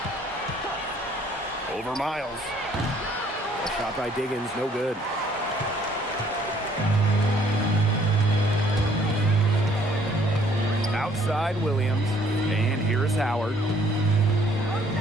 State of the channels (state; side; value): normal; both; correlation 0.61